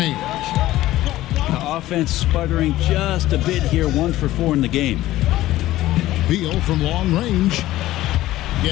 The offense sputtering just a bit here, 1 for 4 in the game. Beal from long range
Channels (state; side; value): quieter; right; 15.6 dB